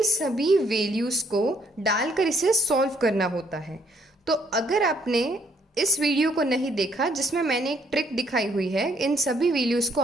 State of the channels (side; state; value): both; normal; correlation 0.68